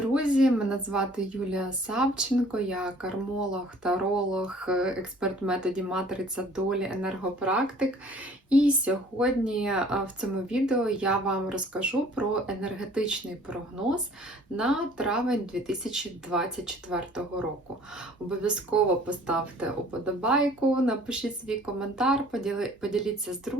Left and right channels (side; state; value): both; normal; correlation 0.53